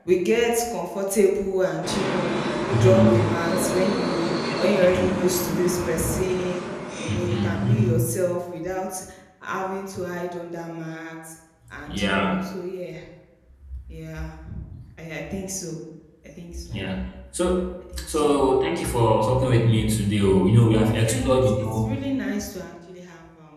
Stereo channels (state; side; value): identical; both; correlation 1.00